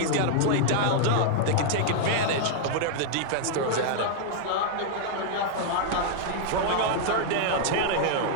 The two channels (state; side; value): different; both; correlation -0.01